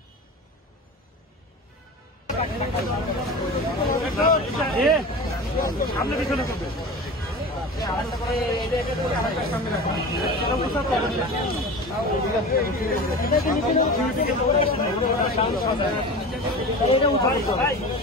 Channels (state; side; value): normal; both; correlation 0.32